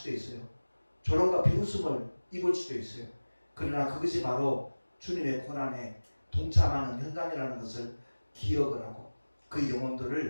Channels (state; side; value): inverted; both; correlation -1.00